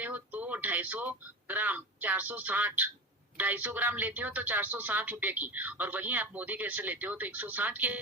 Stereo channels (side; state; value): both; normal; correlation 0.26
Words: हो तो 250 ग्राम 460, 250 ग्राम लेते हो तो 460 रुपए की, और वहीं आप मोदी केयर से लेते हो तो 160 की